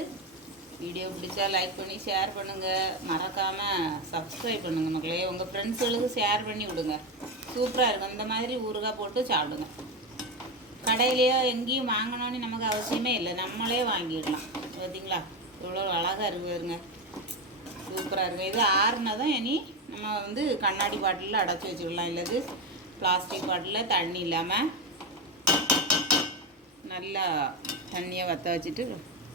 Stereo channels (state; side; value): normal; both; correlation 0.13